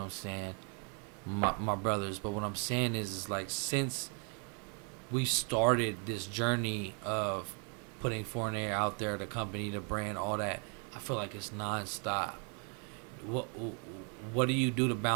I'm saying? My brothers. But what I'm saying is like since we started this journey of putting Foreignary out there, the company, the brand, all that, I feel like it's nonstop. What do you do to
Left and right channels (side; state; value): left; quieter; 39.0 dB